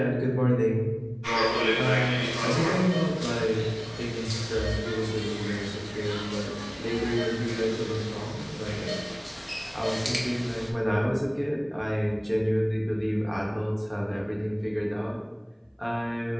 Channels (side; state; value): both; identical; correlation 1.00